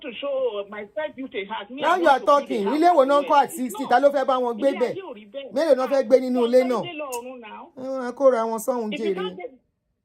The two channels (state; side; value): identical; both; correlation 1.00